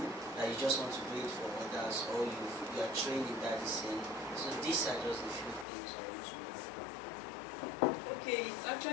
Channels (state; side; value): drops out; right; at 5.7 s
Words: that you just want to do it for others, or you are trained in that scene? So these are just a few things I want to know. Okay, it's